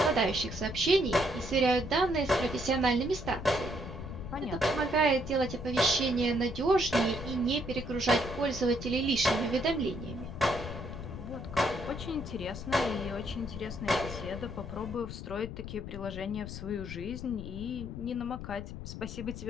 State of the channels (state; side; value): noise; left; rumble, 9 dB below the sound